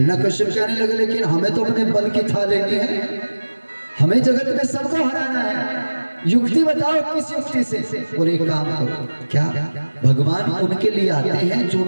के आने लगे, लेकिन हमें तो अपने बल की था लेनी है, हमें जगत में सबको हराना है। युक्ति बताओ, किस युक्ति से? बोले एक काम करो। क्या? भगवान उनके लिए आते हैं जो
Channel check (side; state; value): both; inverted; correlation -1.00